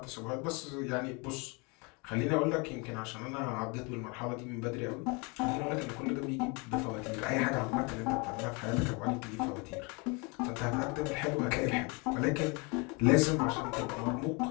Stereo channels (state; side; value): quieter; right; 30.2 dB